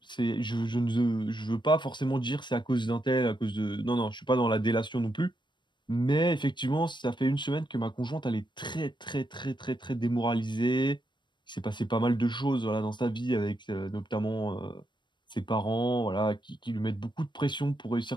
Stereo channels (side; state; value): right; late; 0.22 ms